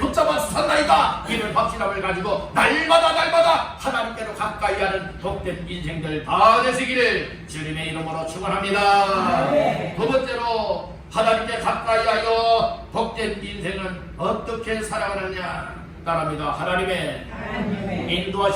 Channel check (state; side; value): identical; both; correlation 1.00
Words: 주셨나이다, 이런 확신함을 가지고 날마다 하나님께로 가까이 하는 복된 인생들 다 되시기를 주님의 이름으로 축원합니다. 두 번째로 하나님께 가까이 하여 복된 인생은 어떻게 살아가느냐? 따라합니다. 하나님의